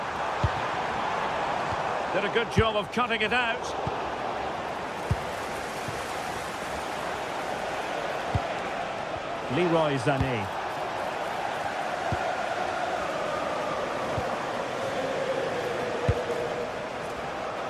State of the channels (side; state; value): both; identical; correlation 1.00